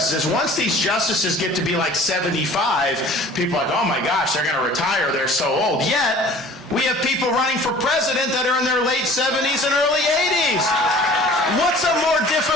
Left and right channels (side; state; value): both; normal; correlation 0.47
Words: once these justices get to be like 75, people are like, oh my gosh, they're going to retire, they're so old. Yet, we have people running for president that are in their late 70s and early 80s. What's a more